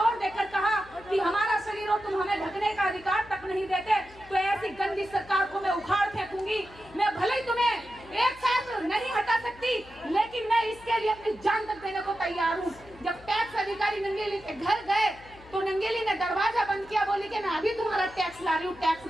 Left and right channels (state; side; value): noise; left; hum, 22 dB below the sound